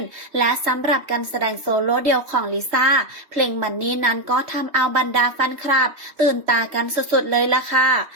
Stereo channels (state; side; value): late; left; 3.2 ms